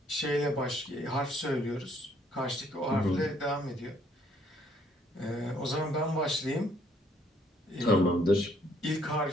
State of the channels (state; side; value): normal; both; correlation 0.66